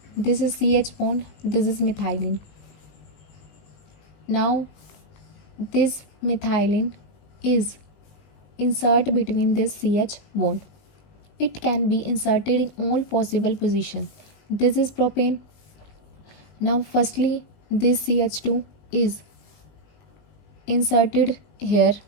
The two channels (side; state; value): right; late; 19 ms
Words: This is CH bond, this is methylene. Now this methylene is insert between this CH bond. It can be inserted in all possible positions. This is propane. Now firstly this CH2 is inserted here,